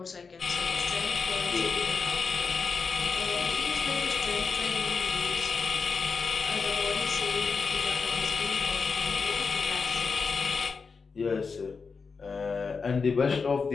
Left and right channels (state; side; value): quieter; right; 5.0 dB